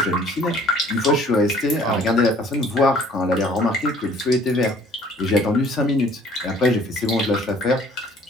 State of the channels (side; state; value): both; normal; correlation 0.55